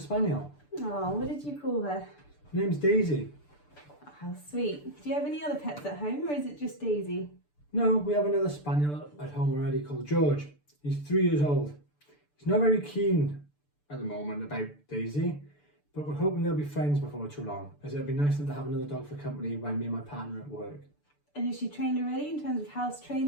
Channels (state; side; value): late; right; 6.8 ms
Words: Oh, what did you call her? Her name's Daisy. Oh, how sweet. Do you have any other pets at home, or is it just Daisy? No, we have another Spaniel at home already called George. He's 3 years old. He's not very keen at the moment about Daisy, but we're hoping they'll be friends before too long, as it'll be nice to have another dog for company when me and my partner are at work. And is she trained already in terms of house